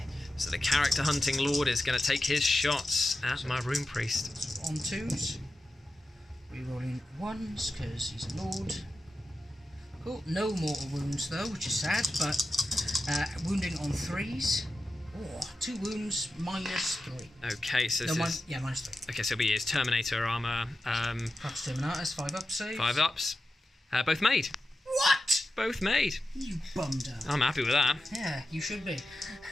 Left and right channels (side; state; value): both; normal; correlation 0.91